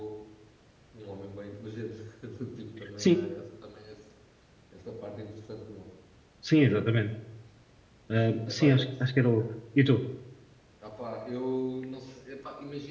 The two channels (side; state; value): both; identical; correlation 1.00